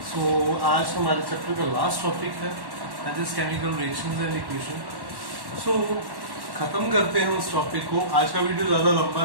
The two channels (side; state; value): left; late; 1.1 ms